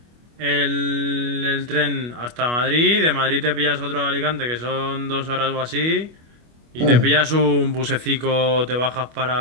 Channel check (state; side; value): late; left; 25 ms